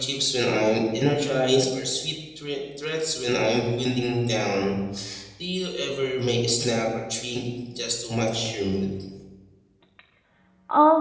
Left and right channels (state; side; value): identical; both; correlation 1.00